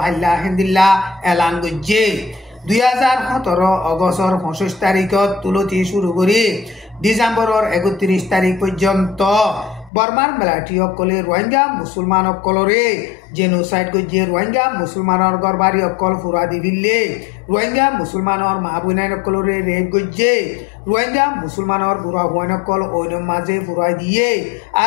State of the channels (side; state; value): right; drops out; at 9.9 s